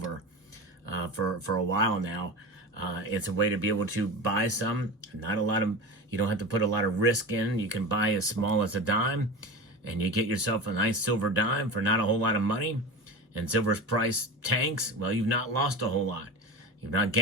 for a while now. It's a way to be able to buy some. You don't have to put a lot of risk in. You can buy as small as a dime, and you get yourself a nice silver dime for not a whole lot of money. And silver's price tanks, well, you've not lost a whole lot. You've not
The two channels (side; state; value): both; normal; correlation 0.28